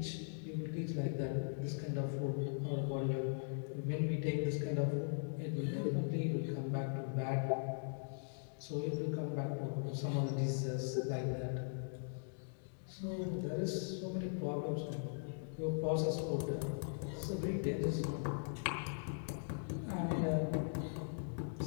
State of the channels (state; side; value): silent; right; digital silence